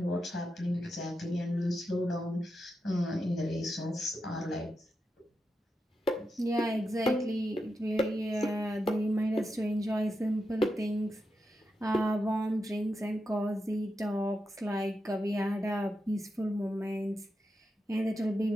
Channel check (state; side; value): normal; both; correlation 0.87